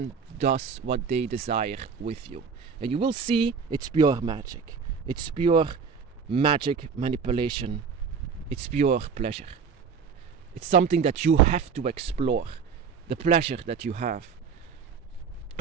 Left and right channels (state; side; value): quieter; left; 6.1 dB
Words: does what they desire with you. And you will see it's pure magic. It's pure magic manipulation. It's pure pleasure. It's something that you have to explore. The pleasure that you have.